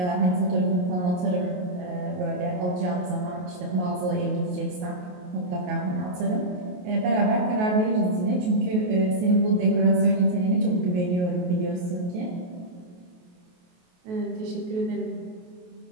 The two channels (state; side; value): late; left; 28 ms